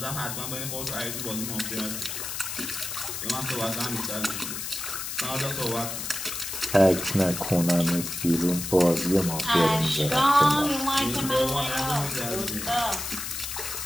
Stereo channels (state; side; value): noise; left; hiss, 5 dB below the sound